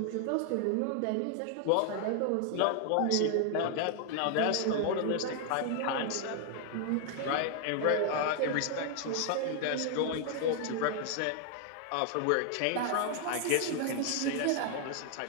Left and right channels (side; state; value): both; different; correlation 0.00